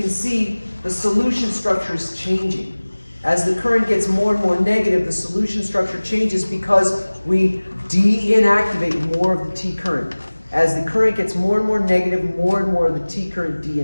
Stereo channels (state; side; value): inverted; both; correlation -1.00